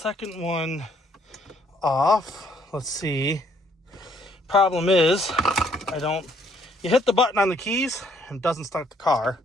one off. Let's see. Problem is, you hit the button on the keys and it doesn't start the car.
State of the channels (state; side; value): normal; both; correlation 0.66